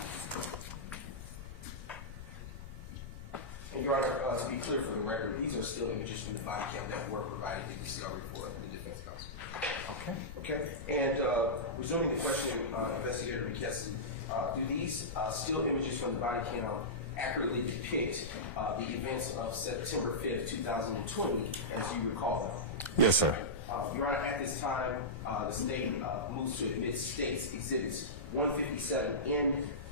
Your Honor, to be clear for the record, these are still images from the body cam that were provided in discovery for the defense counsel. Okay. Okay, and resuming the question, Investigator McKesson, do these still images from the body cam accurately depict the events of September 5th, 2020, as you recall them? Yes, sir. Your Honor, at this time, the state moves to admit states exhibits 157N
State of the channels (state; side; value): noise; left; rumble, 11 dB below the sound